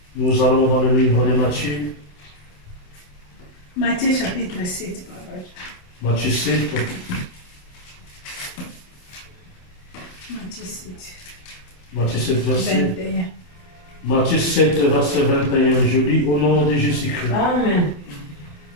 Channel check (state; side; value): late; right; 28 ms